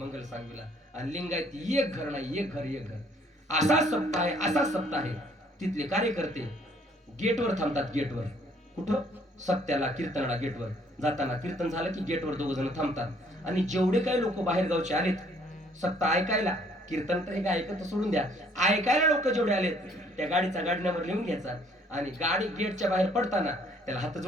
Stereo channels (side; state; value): both; normal; correlation 0.62